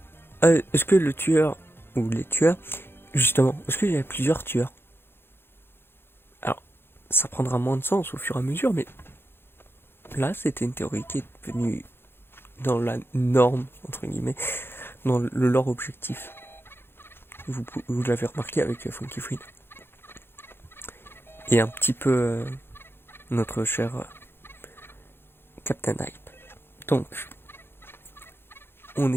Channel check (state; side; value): late; right; 0.11 ms